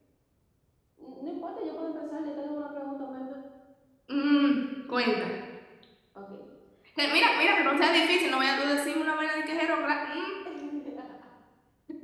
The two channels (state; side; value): identical; both; correlation 1.00